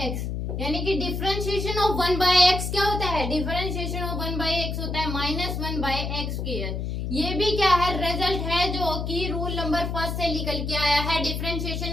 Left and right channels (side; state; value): left; noise; hum, 3 dB below the sound